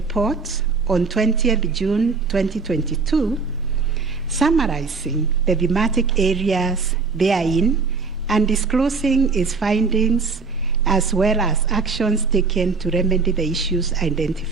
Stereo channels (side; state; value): left; quieter; 4.6 dB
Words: on 20th June 2022, summarizing the thematic areas therein and disclosing its findings as well as actions taken to remedy the issues